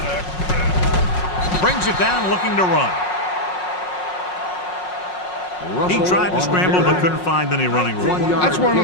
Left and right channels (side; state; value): right; late; 5.5 ms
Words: Brings it down looking to run. He tried to scramble but couldn't find any running room. That's one